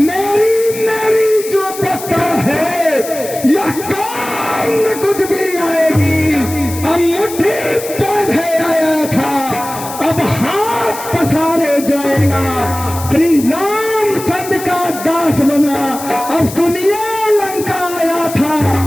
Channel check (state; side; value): noise; left; hiss, 12 dB below the sound